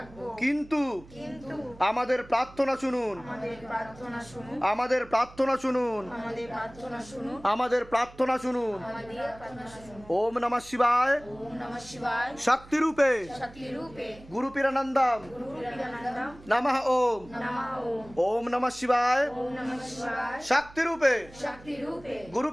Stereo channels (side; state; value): right; noise; hum, 21 dB below the sound